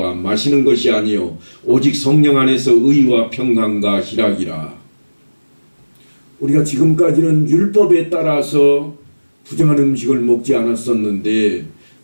마시는 것이 아니요 오직 성령 안에서 의와 평강과 희락이라. 우리가 지금까지는 율법에 따라서 부정한 음식을 먹지 않았었는데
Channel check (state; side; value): inverted; both; correlation -1.00